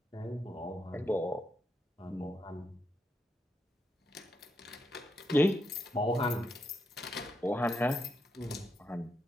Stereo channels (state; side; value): normal; both; correlation 0.81